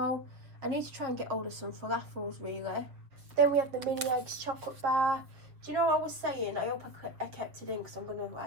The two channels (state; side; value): late; left; 7.3 ms